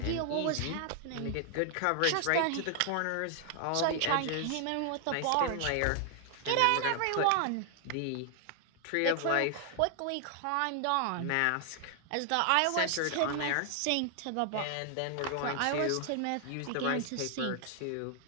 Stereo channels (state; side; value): different; both; correlation 0.00